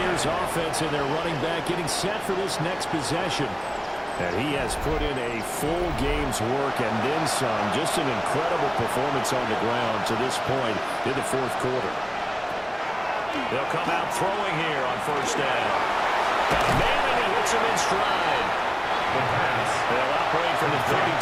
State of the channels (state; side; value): identical; both; correlation 1.00